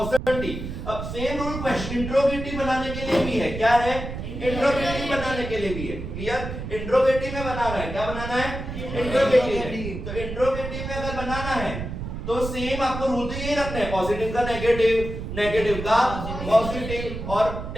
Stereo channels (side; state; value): right; noise; rumble, 7 dB below the sound